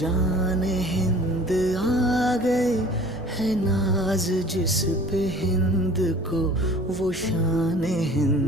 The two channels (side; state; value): both; normal; correlation 0.47